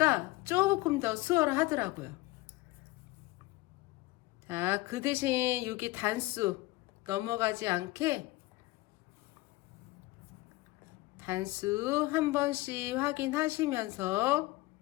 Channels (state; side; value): quieter; right; 19.9 dB